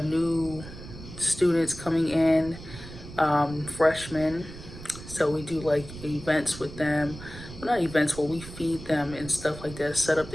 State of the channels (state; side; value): noise; right; rumble, 14 dB below the sound